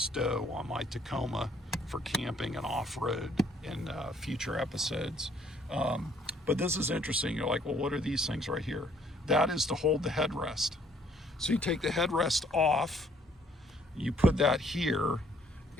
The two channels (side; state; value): both; normal; correlation 0.63